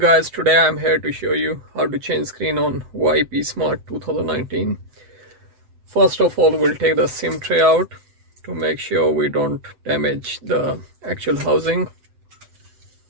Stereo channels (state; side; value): late; left; 7.9 ms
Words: today I'm here to show you how to change screen on Huawei psmart 2019. First of all, we'll take the SIM tray out to make sure we don't damage the actual housing.